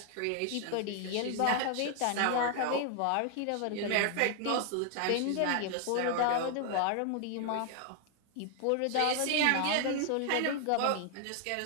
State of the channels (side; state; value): both; different; correlation 0.00